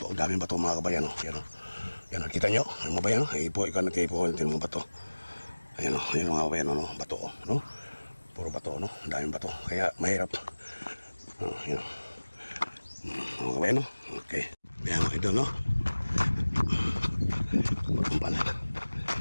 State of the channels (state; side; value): inverted; both; correlation -1.00